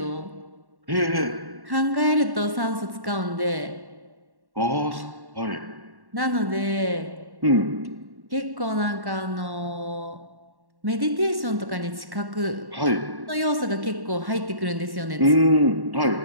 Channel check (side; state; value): left; late; 1.1 ms